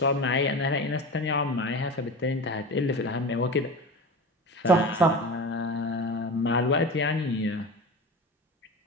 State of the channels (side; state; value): both; normal; correlation 0.30